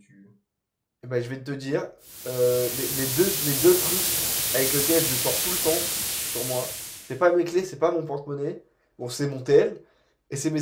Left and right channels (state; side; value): identical; both; correlation 1.00